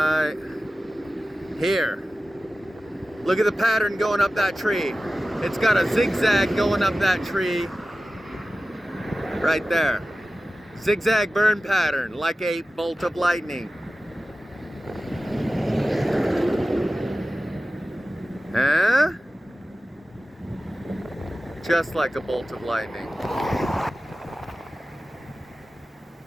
here. Look at the pattern going up that tree. It's got a zigzag going up that tree. Right there. Zigzag burn pattern, like a bolt of lightning. Huh? Just like a bolt of lightning.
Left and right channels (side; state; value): both; normal; correlation 0.95